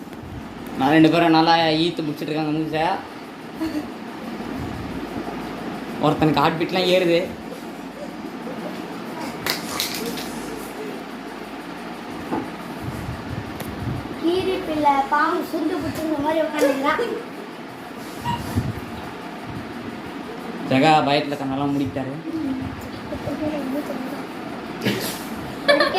நான் 2 பேரும் நல்லா ஈத்து முடிச்சிட்டு இருக்காங்க மூஞ்ச. ஒருத்தனுக்கு ஹார்ட் பீட்லாம் ஏறுது. கீரி பிள்ளை பாம்பு சுண்டு புடிச்ச மாதிரி உட்காந்துக்கிறான். ஜெகா பயத்துல கண்ணெல்லாம் முடிக்கிட்டாரு.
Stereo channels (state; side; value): identical; both; correlation 1.00